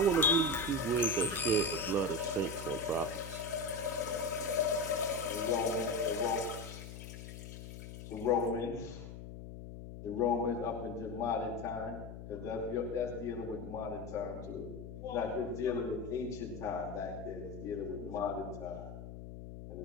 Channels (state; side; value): noise; left; hum, 11 dB below the sound